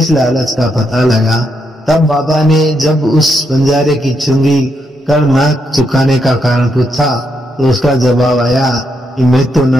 लालच का पता लगा। तब बाबा ने जब उस बंजारे की चुंगी कर न चुकाने का कारण पूछा तो उसका जवाब आया कि मैं तो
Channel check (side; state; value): both; normal; correlation 0.80